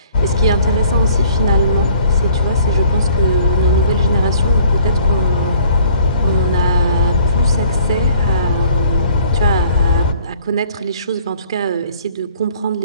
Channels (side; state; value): both; inverted; correlation -0.56